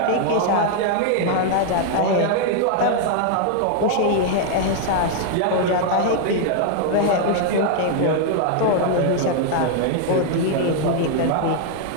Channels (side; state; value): both; different; correlation 0.00